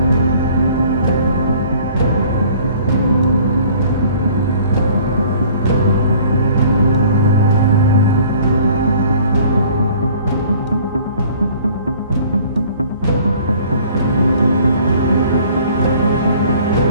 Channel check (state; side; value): inverted; both; correlation -0.53